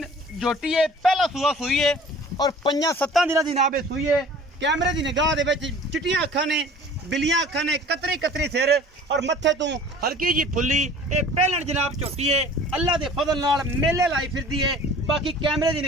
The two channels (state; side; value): normal; both; correlation 0.47